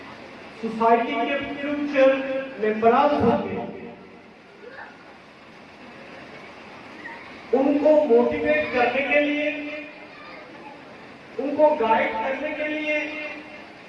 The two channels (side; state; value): both; identical; correlation 1.00